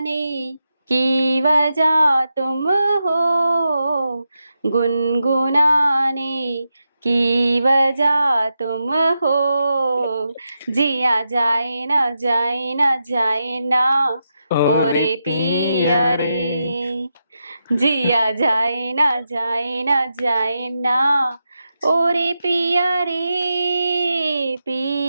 की वजह तुम हो, गुनगुनाने की वजह तुम हो, जिया जाए ना जाए ना जाए ना ओरे पिया रे, जिया जाए ना जाए ना जाए ना ओरे पिया रे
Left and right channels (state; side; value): inverted; both; correlation -0.87